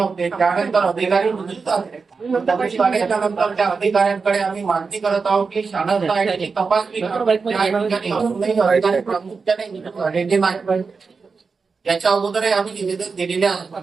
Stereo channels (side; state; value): left; quieter; 4.8 dB